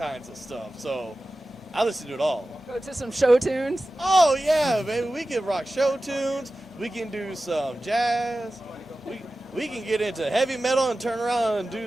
of stuff. So I listen to it all. Go to some show tunes? Oh, yeah, baby. We can rock show tunes. We can do some jazz. We can get into heavy metal and turn around and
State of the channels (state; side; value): normal; both; correlation 0.95